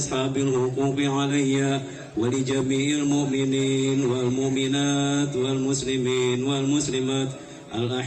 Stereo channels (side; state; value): both; identical; correlation 1.00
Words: huquqi alayya wa li jami'il mu'minin wal mu'minat wal muslimin wal muslimat